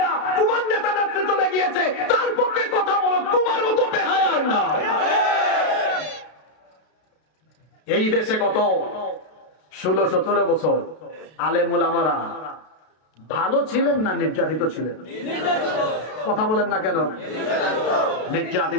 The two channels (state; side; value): late; right; 32 ms